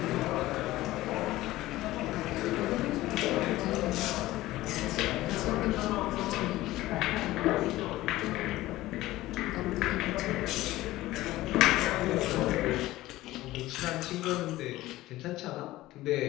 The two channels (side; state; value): right; quieter; 16.9 dB